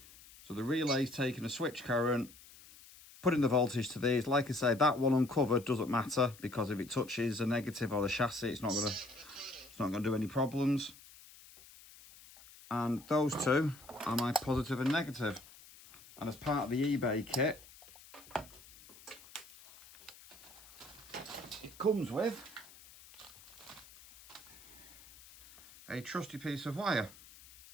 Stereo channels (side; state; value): left; noise; hiss, 21 dB below the sound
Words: So the relay's taking a switch current, putting the voltage to these. Like I say, that one uncovered doesn't matter because if it touches a negative or the chassis, it's not gonna do any problems. And those two are my positive and negative. And as part of the eBay kit, it comes with a trusty piece of wire,